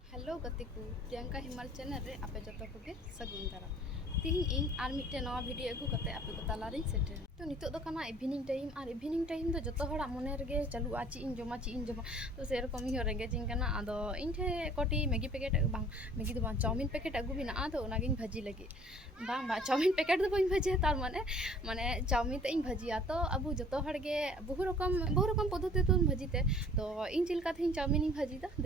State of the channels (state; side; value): normal; both; correlation 0.52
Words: Hello गति को प्रियंका हिमाल चैनल रे आपे जो को सगुन दारा तीन इन आर मिट्टे नवा वीडियो अगू करते आपे को तालारिन सेटर तो नितो दो कना इवनिंग टाइम तो जतो हड़ा मने रगे चालू आची इन जमा तो से रकम ही रेंगे जिंग कना आदो इन ठे कोटी मैगी पैकेट बांग मैगी दो बांग चाउमिन पैकेट अगू बिना आदो नागिन भाजी लगे बांग बा चाउमिन पैकेट दो बइन भाजी तार माने माने चाउमिन ते इन भाजिया तो अबू जतो हड़गे बहु रकम पद्धति तो भाजीते तो इन चिलका थे चाउमिन इन भाजी दा